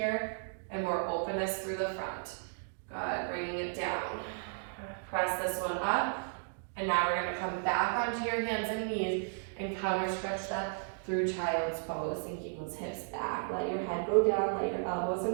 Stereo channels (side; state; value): left; silent; digital silence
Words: and more openness through the front. Good, bringing it down. Press this one up. And now we're gonna come back onto your hands and knees and counter stretch that through child's pose, and keep those hips back. Let your head go down, let your elbows